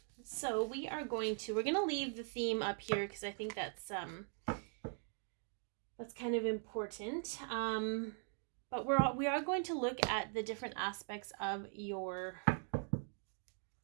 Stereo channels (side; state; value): left; silent; 50 dB below the other